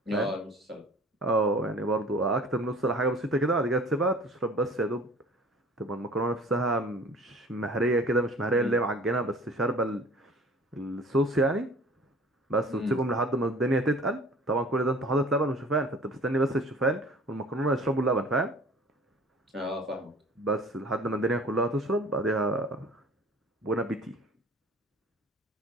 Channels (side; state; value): both; normal; correlation 0.47